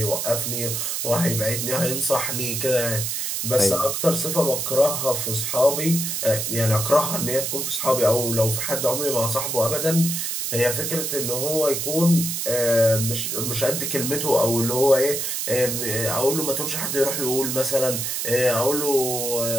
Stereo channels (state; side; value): noise; right; hiss, 2 dB below the sound